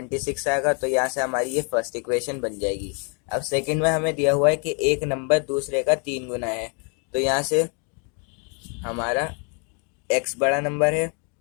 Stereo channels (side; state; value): right; quieter; 37.7 dB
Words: आएगा। तो यहाँ से हमारी ये फर्स्ट इक्वेशन बन जाएगी। अब सेकंड में हमें दिया हुआ है कि एक नंबर दूसरे का 3 गुना है। तो यहाँ से हमारा x बड़ा नंबर है